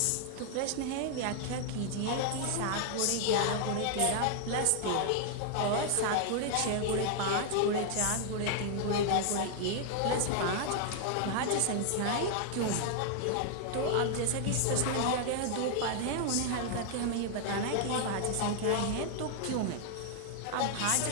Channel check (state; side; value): different; both; correlation 0.00